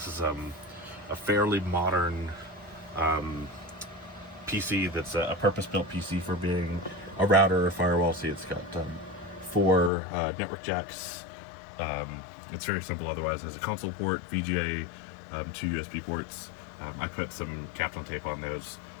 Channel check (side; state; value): right; drops out; at 9.9 s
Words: is a fairly modern PC that's a purpose-built PC for being a router or firewall. See, it's got 4 network jacks. It's very simple otherwise. There's a console port, VGA, 2 USB ports. I put some Kaplan tape on those